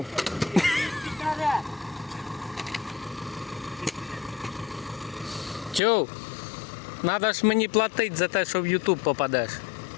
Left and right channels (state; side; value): drops out; right; at 5.8 s